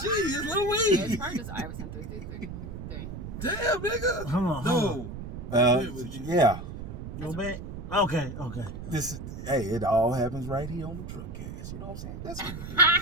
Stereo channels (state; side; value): noise; right; rumble, 9 dB below the sound